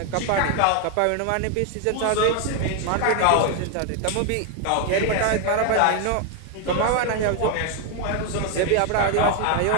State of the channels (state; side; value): different; both; correlation 0.01